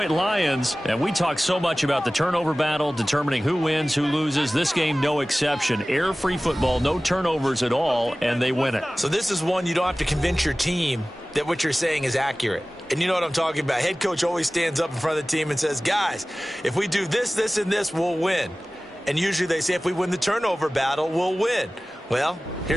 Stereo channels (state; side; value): normal; both; correlation 0.98